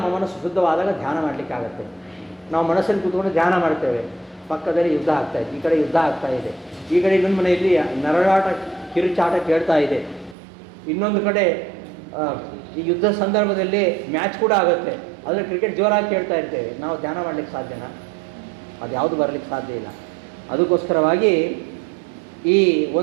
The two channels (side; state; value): left; drops out; at 10.4 s